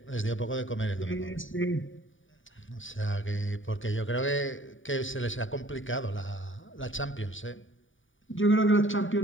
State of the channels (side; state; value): right; late; 0.57 ms